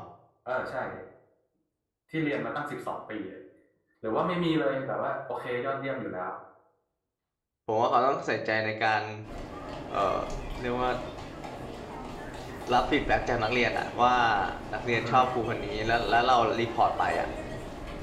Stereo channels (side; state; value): both; identical; correlation 1.00